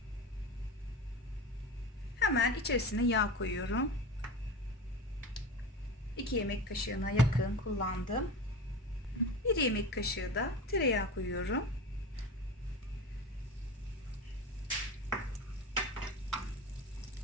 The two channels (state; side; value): normal; both; correlation 0.29